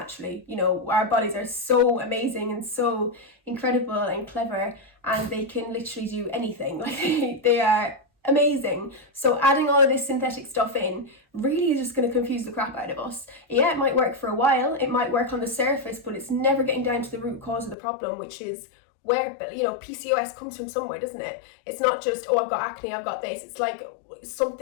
You know, our bodies are so amazing and so incredible and clever, and they can literally do anything. Like they are amazing. So adding all of this synthetic stuff in really is just going to confuse the crap out of us. Yeah, it might work for a while, it might work on the surface, but it's never getting down to the root cause of the problem, which is where, PCOS comes from somewhere, doesn't it? It's not just, oh, I've got acne, I've got this. It's like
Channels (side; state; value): right; drops out; at 17.8 s